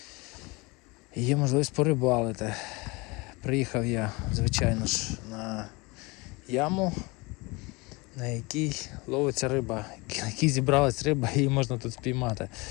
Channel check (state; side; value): quieter; right; 25.5 dB